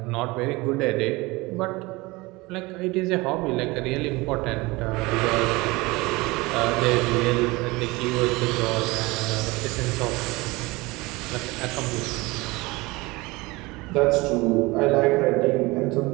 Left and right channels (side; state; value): left; quieter; 22.8 dB